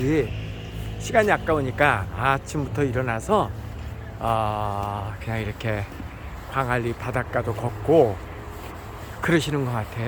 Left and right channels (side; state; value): both; identical; correlation 1.00